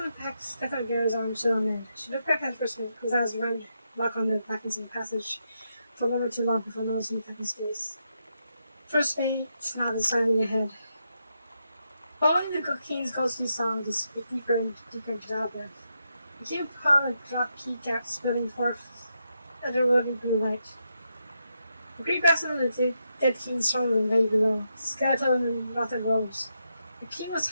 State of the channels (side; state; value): both; inverted; correlation -0.83